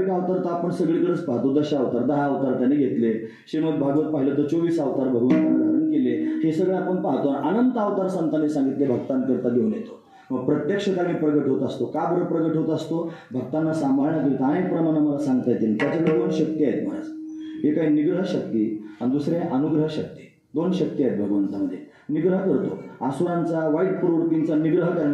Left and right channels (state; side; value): identical; both; correlation 1.00